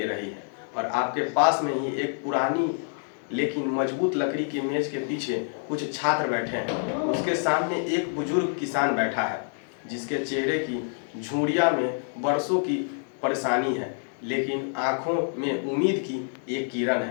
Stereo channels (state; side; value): silent; right; 60 dB below the other